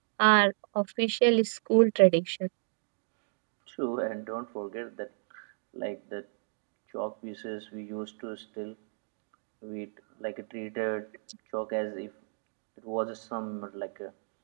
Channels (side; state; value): left; silent; digital silence